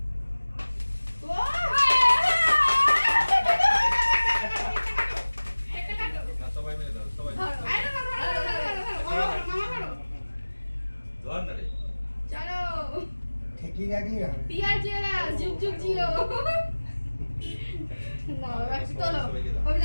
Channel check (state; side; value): inverted; both; correlation -1.00